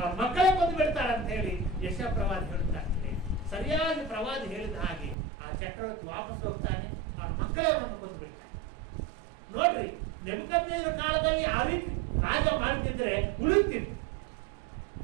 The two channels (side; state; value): left; drops out; at 5.2 s